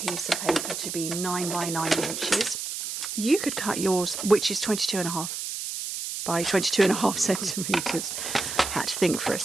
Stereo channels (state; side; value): noise; right; hiss, 5 dB below the sound